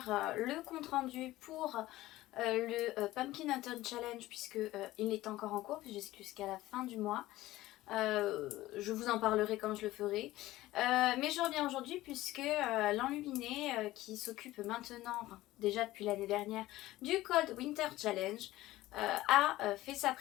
le compte rendu pour le Pumpkin Autumn Challenge puisque il est encore en cours jusqu'à la fin du mois. Je vous en parlerai quand je le ferai. Mais je reviens aujourd'hui puisque l'Enluminé qui s'occupe maintenant, enfin déjà depuis l'année dernière, du Cold Winter Challenge a fait sa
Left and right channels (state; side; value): quieter; right; 16.7 dB